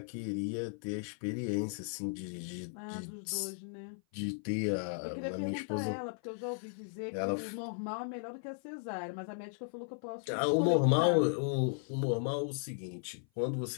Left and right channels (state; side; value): silent; right; 54 dB below the other